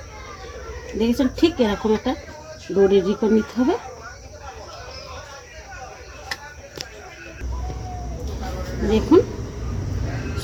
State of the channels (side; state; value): both; identical; correlation 1.00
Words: দেখেছেন, ঠিক এরকম একটা ডো রেডি করে নিতে হবে। দেখুন